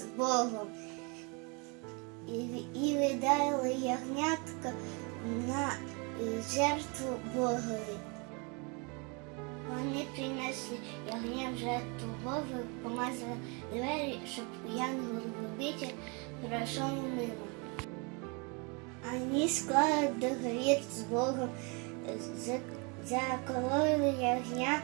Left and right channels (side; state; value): left; quieter; 31.8 dB